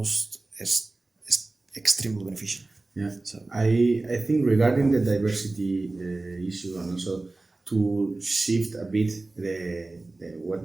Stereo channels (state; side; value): quieter; left; 3.2 dB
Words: extremely beneficial. Yeah, So I think regarding the diversity issue, and also to shift a bit